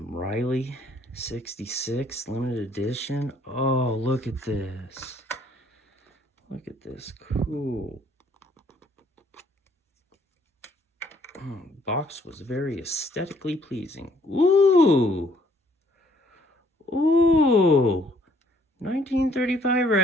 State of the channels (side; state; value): both; normal; correlation 0.64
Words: Riley 66 limited edition. Oh, look at this. Look at this. Cool. Box was very aesthetically pleasing. Ooh. Ooh. 1935